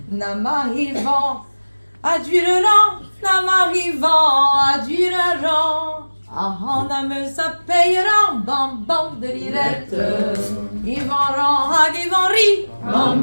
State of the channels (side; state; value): both; inverted; correlation -1.00